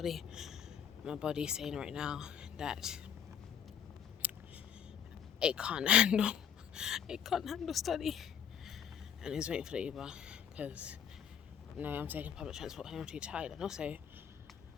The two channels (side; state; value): right; quieter; 8.4 dB